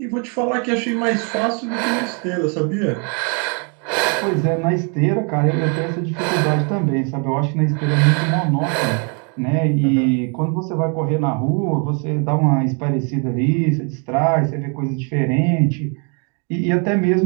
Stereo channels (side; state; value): left; quieter; 36.8 dB